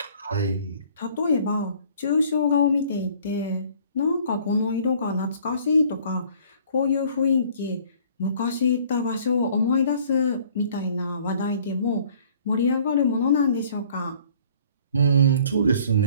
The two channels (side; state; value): both; inverted; correlation -0.55